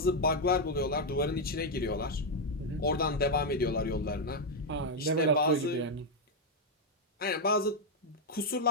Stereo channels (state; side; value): normal; both; correlation 0.01